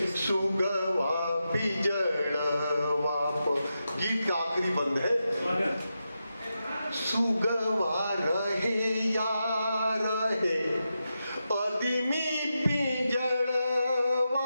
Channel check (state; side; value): inverted; both; correlation -0.88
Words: सुगवा पिंजड़वा पर। गीत का आखिरी बंद है। सुगवा रहे या रहे आदमी